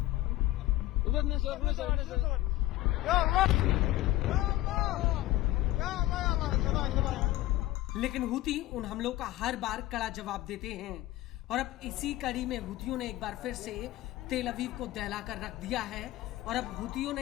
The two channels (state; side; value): quieter; right; 15.7 dB